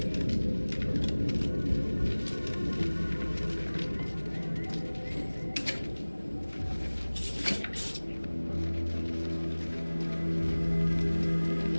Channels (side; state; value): both; inverted; correlation -1.00